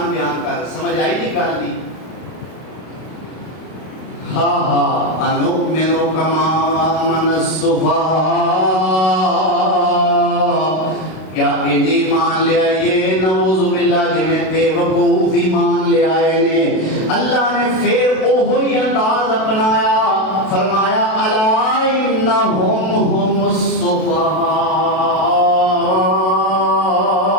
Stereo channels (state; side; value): late; right; 32 ms